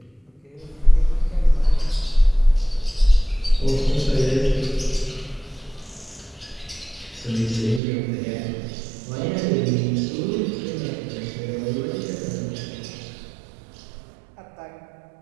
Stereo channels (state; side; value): drops out; left; at 7.8 s